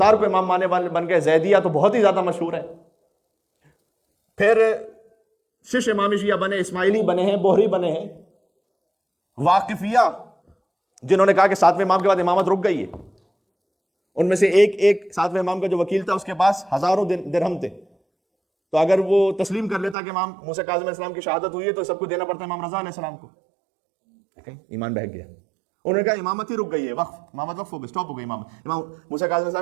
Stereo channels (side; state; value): left; drops out; at 20.0 s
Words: کو امام ماننے والے بن گئے. زیدیہ تو بہت ہی زیادہ مشہور ہے. پھر شش امامی شیعہ بنے، اسماعیلی بنے ہیں، بوہری بنے ہیں، واقفیہ جنہوں نے کہا کہ 7ویں امام کے بعد امامت رک گئی ہے. ان میں سے ایک 7ویں امام کا جو وکیل تھا اس کے پاس ہزاروں درہم تھے، تو اگر وہ تسلیم کر لیتا کہ امام موسیٰ کاظم علیہ السلام کی شہادت ہوئی ہے تو سب کو دینا پڑتا ہے امام رضا علیہ السلام کو. ایمان بہک گیا. انہوں نے کہا امامت ہی رک گئی ہے، وقف، امامت وقف ہو گئی، سٹاپ ہو گئی. امام موسیٰ کاظم علیہ